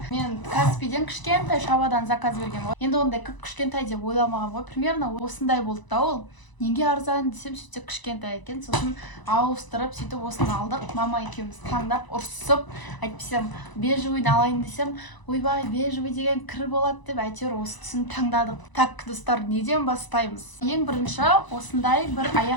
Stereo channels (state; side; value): late; right; 1.0 ms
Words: Мен Каспийден кішкентай шабадан заказ берген ғой. Енді ондай кішкентай деп ойламаған ғой. Примерно осындай болды да ол. Неге арзан десем, сөйтсе кішкентай екен. Сосын ауыстырып, сөйтіп осыны алдық. Мама екеуміз таңдап, ұрсып, айтпасам бежевыйды алайын десем, ойбай, бежевый деген кір болады деп, әйтеуір осы түсін таңдадық. Так, достар, неден бастаймыз? Ең бірінші осындай бір